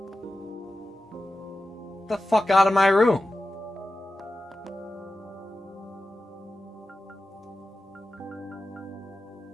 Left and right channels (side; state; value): both; normal; correlation 0.93